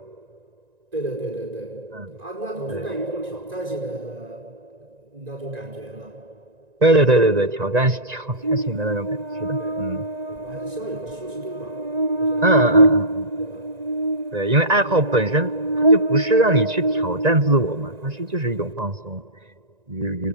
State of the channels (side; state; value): left; late; 1.9 ms